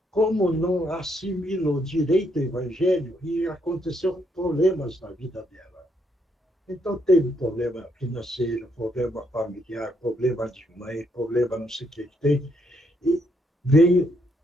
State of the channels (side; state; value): both; normal; correlation 0.74